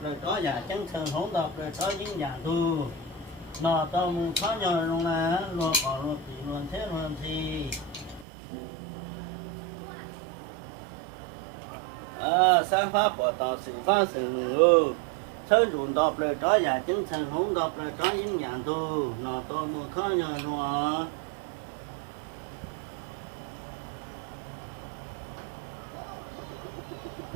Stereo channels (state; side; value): drops out; left; at 8.2 s